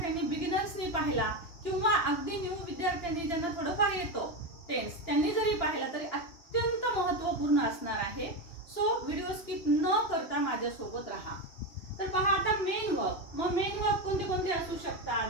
बिगिनर्सनी पाहिला किंवा अगदी न्यू विद्यार्थ्यांनी ज्यांना थोडंफार येतो टेन्स, त्यांनी जरी पाहिला तरी अत्यंत महत्त्वपूर्ण असणार आहे. सो व्हिडिओ स्किप न करता माझ्यासोबत राहा. तर पहा, आता मेन वर्ब. मग मेन वर्ब कोणते कोणते असू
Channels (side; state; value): right; late; 2.9 ms